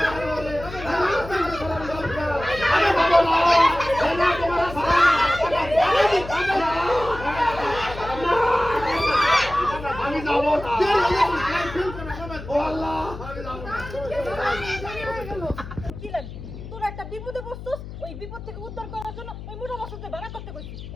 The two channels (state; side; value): noise; left; hum, 12 dB below the sound